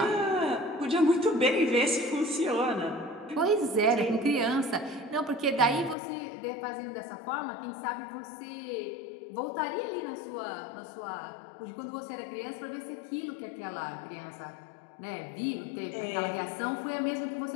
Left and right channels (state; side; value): drops out; right; at 6.0 s